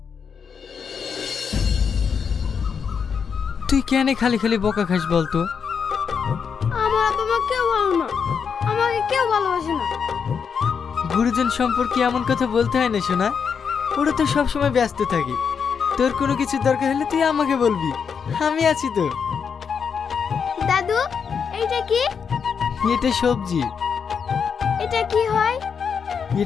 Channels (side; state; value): right; quieter; 6.5 dB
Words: তুই কেন খালি খালি বকা খাস বলতো? আমার বাবা মা কেউ ভালো না, আমাকে কেউ ভালোবাসে না। গুরুজন সম্পর্কে এমন কথা বলতে হয় না শোনা, ওরা তো সবসময় ব্যস্ত থাকে। তোর কোনো কিছু দরকার হলে তুই আমাকে বলবি, আমি আছি তো। দাদু, এইটা কি? এটা সবজি। এটা কি হয়?